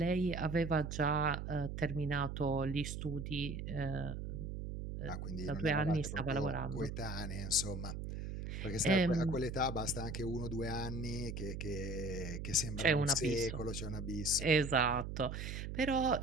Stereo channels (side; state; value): right; noise; hum, 6 dB below the sound